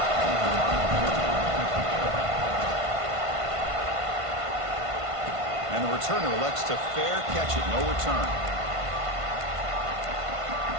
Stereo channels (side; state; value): left; late; 1.5 ms